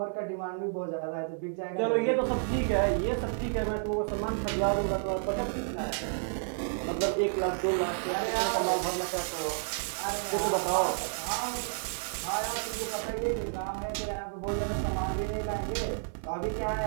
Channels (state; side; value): silent; left; 56 dB below the other